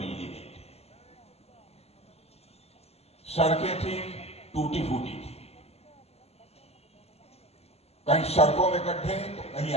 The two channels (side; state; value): right; late; 0.30 ms